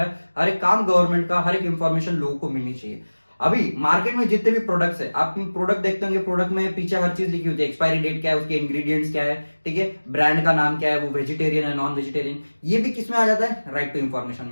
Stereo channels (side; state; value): both; inverted; correlation -1.00